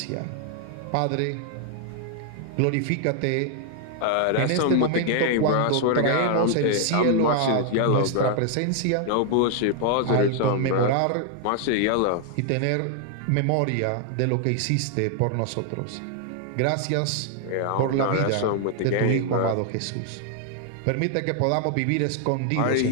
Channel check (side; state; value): both; different; correlation 0.00